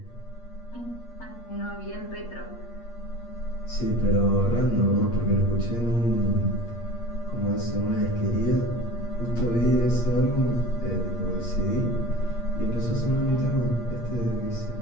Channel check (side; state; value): right; late; 8.5 ms